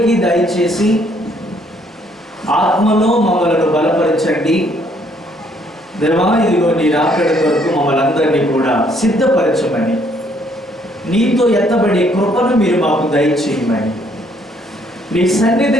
దయచేసి ఆత్మలో మమ్మలను బలపరచండి. దేవా, ఇదిగో నీ రాకడ కొరకు మమ్మల్ని అందరినీ కూడా సిద్ధపరచమని, నీతో ఎత్తబడే కృపను మీరు మాకు దయచేయమని, నీ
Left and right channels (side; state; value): both; normal; correlation 0.66